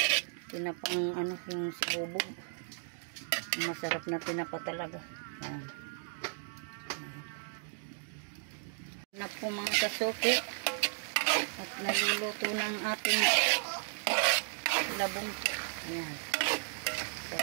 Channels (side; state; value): left; silent; digital silence